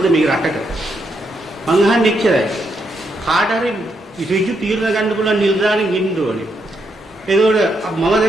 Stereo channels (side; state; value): both; normal; correlation 0.79